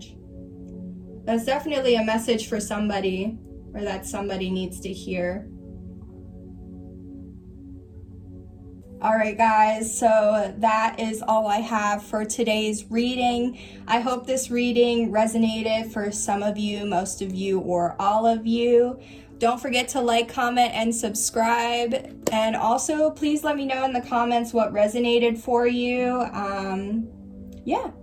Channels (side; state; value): both; identical; correlation 1.00